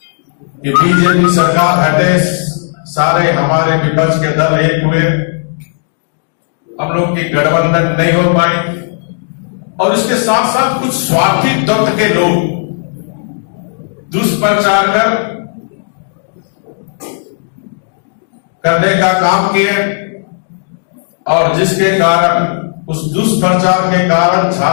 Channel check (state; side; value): silent; right; digital silence